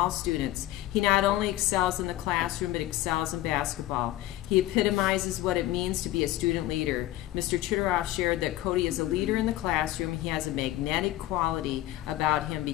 students. He not only excels in the classroom, but excels in basketball. He epitomizes what it means to be a student leader. Mr. Chitteroff shared that Cody is a leader in the classroom. He has a magnetic quality about him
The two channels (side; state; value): right; quieter; 15.3 dB